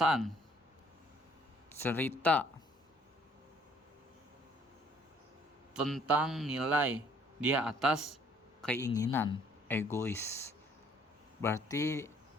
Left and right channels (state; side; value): normal; both; correlation 0.61